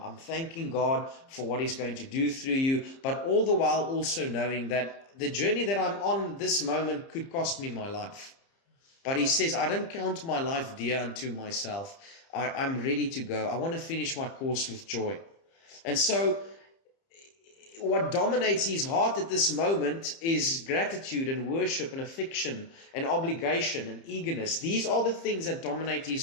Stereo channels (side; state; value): right; late; 30 ms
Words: thanking God for what he's going to do through you. But all the while also knowing that the journey that I'm on this moment could cost me my life. But he says, I don't count my life dear unto myself. I'm ready to go. I want to finish my course with joy. And so what dominates his heart at this moment is gratitude and worship and affection and obligation and eagerness. These are the things that dominate